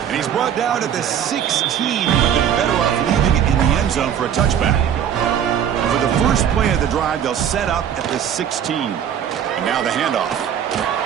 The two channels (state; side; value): quieter; left; 9.1 dB